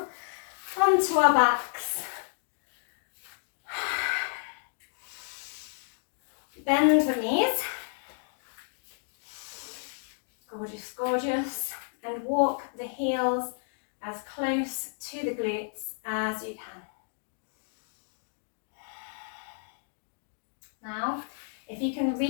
onto our backs. Bend the knees. Gorgeous, gorgeous. And walk the heels as close to the glutes as you can. Now, if you can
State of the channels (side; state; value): right; silent; digital silence